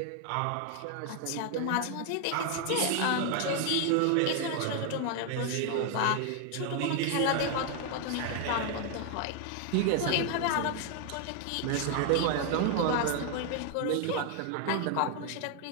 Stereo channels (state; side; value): different; both; correlation 0.00